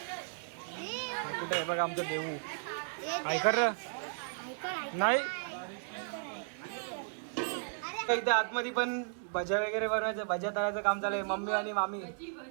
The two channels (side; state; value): left; silent; digital silence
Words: कुठे आहे बघा आमचं देऊ. ऐकर नाही इथे आतमध्ये पण भज्या वगैरे बनवायचं, भज्या तळायचं काम चालू आहे. मम्मी आणि मामी